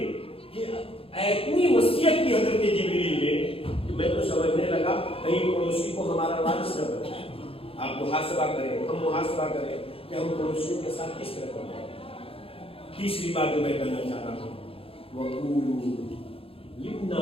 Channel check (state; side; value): late; right; 0.27 ms